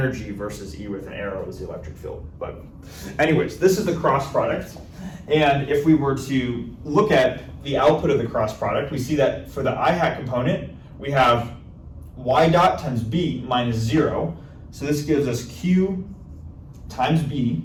versus E with an arrow was the electric field. But anyways, this is the cross product. And if we were to look at the output of the cross product, we see that for the I hat component, we have y dot times B minus 0. So this gives us Q times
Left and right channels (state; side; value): identical; both; correlation 1.00